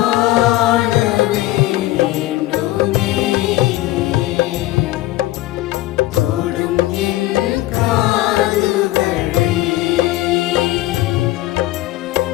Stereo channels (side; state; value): right; quieter; 16.7 dB